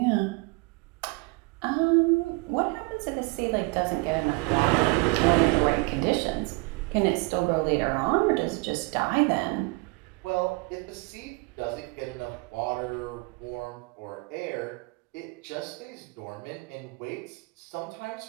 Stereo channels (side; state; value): left; quieter; 26.6 dB